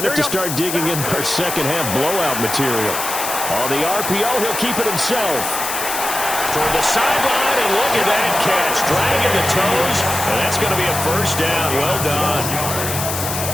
have to start digging in our second-half blowout material. On the RPO, he'll keep it himself. Toward the sideline, and look at that catch. Dragging the toes, and that's going to be a 1st down. Well done.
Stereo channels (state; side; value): noise; left; hiss, 4 dB below the sound